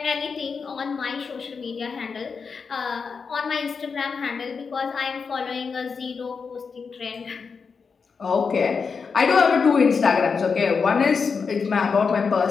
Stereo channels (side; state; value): right; quieter; 5.4 dB